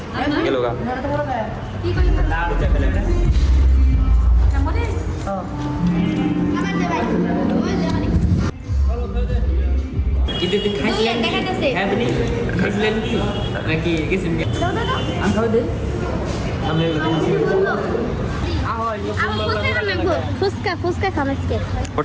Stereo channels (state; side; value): identical; both; correlation 1.00